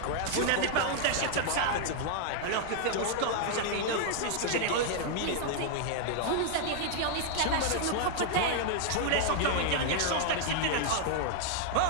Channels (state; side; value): different; both; correlation 0.00